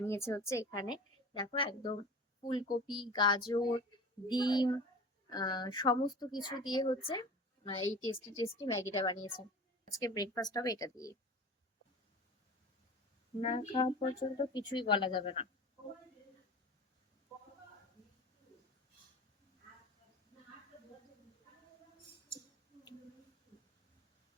হচ্ছে এখানে, দেখো একদম ফুলকপি, গাজর, ডিম, সমস্ত কিছু দিয়ে হচ্ছে এই টেস্টি টেস্টি ম্যাগিটা বানিয়েছে। আজকে ব্রেকফাস্ট হবে এটা দিয়ে। না খাওয়া পর্যন্ত কিছুই বলা যাবে না।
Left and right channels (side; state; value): both; normal; correlation 0.37